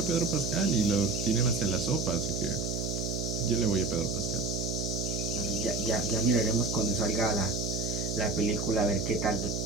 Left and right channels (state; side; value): noise; right; hum, 2 dB below the sound